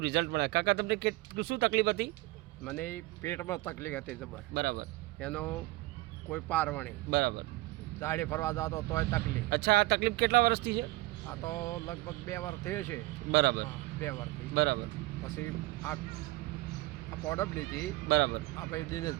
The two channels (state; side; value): quieter; left; 19.9 dB